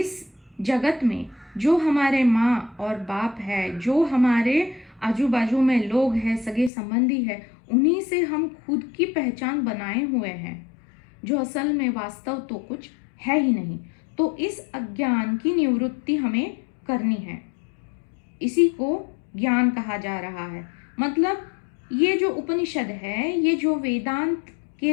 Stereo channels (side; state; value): right; drops out; at 6.7 s